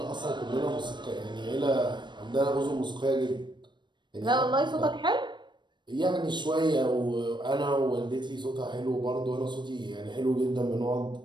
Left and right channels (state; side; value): late; left; 0.22 ms